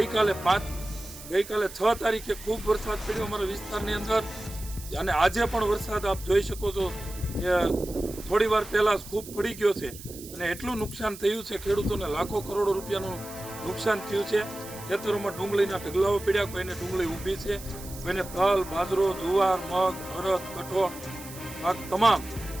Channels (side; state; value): right; noise; hiss, 15 dB below the sound